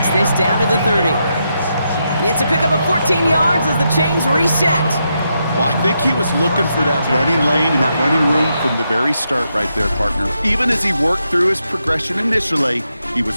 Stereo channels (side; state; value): both; inverted; correlation -0.83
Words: this down to the 30. It's a pickup of 14 yards as the chains reset. Well, I think he was looking for that running lane and that running room from the very start right there, partner. Even as he worked through his progression initially, he